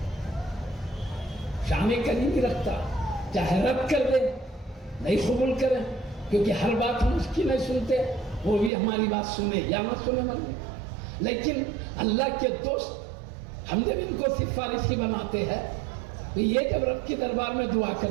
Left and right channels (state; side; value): drops out; left; at 8.7 s